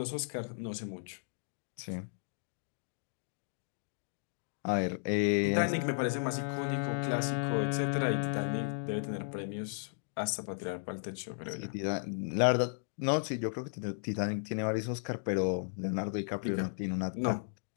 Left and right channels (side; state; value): right; silent; digital silence